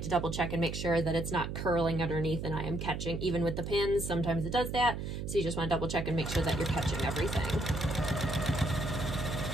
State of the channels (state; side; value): noise; right; hum, 5 dB below the sound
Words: to double check and make sure that it's not curling underneath and I am catching, even with the pins, sometimes it does that. So you just want to double check and make sure that you're catching everything.